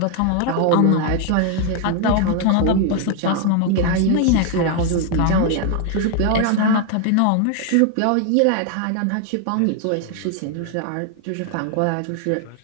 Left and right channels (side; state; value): both; different; correlation 0.01